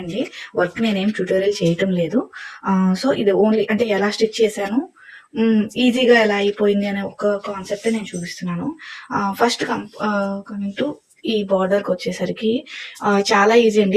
అండి. వర్క్ నేనేం ట్యూటోరియల్ చేయటం లేదు. సో ఇది ఓన్లీ అంటే ఎలా స్టిచ్ చేశాను, ఈజీగా ఎలా అయిపోయింది అనే ఒక కాన్సెప్ట్ నేను చూపిస్తున్నాను. ఫస్ట్ కమింగ్ టు ఈ బార్డర్కి వచ్చేసరికి చాలా ఈజీ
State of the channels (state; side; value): identical; both; correlation 1.00